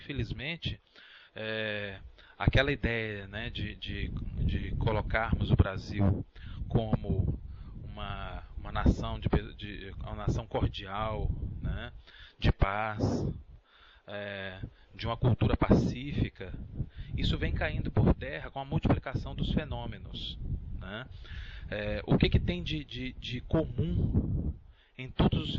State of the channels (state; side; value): identical; both; correlation 1.00